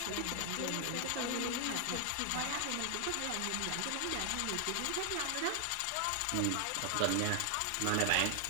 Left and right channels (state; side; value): different; both; correlation 0.00